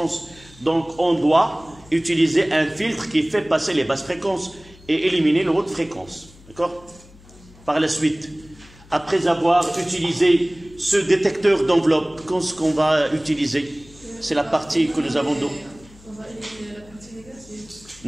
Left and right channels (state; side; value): noise; left; hum, 24 dB below the sound